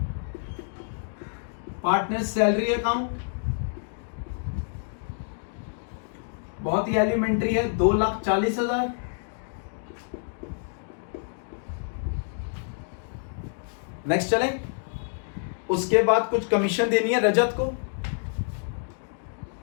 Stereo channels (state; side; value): silent; right; digital silence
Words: partner salary account. बहुत ही एलिमेंट्री है, 2,40,000। नेक्स्ट चलें, उसके बाद कुछ कमीशन देनी है रजत को,